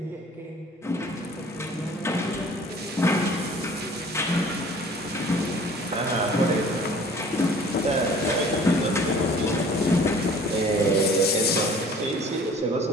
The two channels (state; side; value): normal; both; correlation 0.50